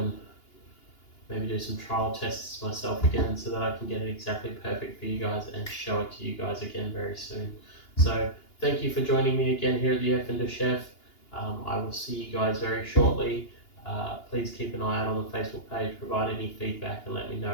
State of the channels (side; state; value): right; late; 2.8 ms